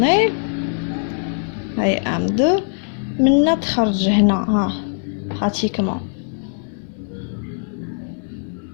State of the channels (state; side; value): silent; right; digital silence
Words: هاي M2 منا تخرج هنا ها pratiquement.